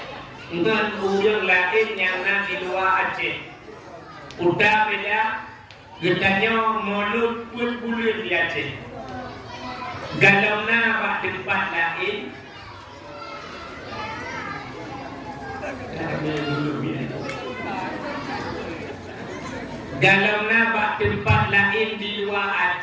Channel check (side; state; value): both; identical; correlation 1.00